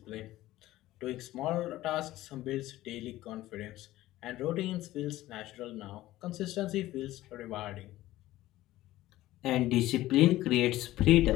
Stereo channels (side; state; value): right; quieter; 15.9 dB